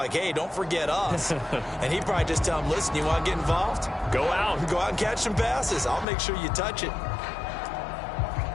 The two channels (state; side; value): drops out; right; at 6.1 s